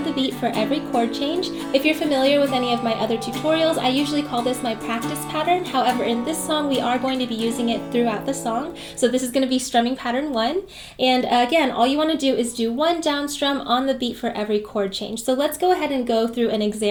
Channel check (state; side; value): identical; both; correlation 1.00